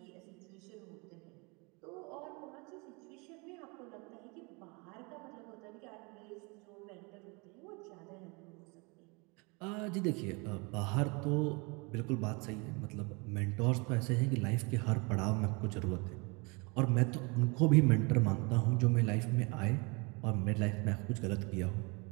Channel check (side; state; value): left; quieter; 29.5 dB